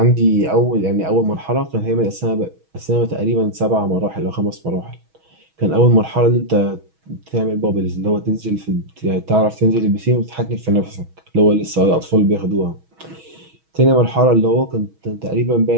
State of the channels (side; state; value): left; late; 6.2 ms